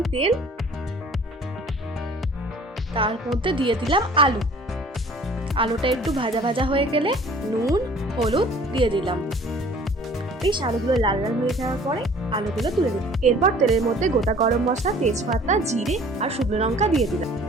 তেল, তার মধ্যে দিয়ে দিলাম আলু। আলুটা একটু ভাজা ভাজা হয়ে গেলে নুন হলুদ দিয়ে দিলাম। বেশ আলুগুলো লাল লাল হয়ে যাওয়ার পরে আলুগুলো তুলে দিলাম। এরপর তেলের মধ্যে গোটা গরম মশলা, তেজপাতা, জিরে আর শুকনো লঙ্কা দিয়ে দিলাম।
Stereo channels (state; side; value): normal; both; correlation 0.51